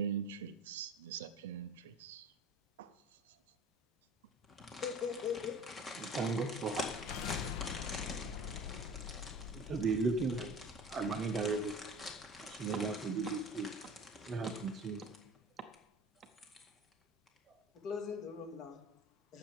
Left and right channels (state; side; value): normal; both; correlation 0.41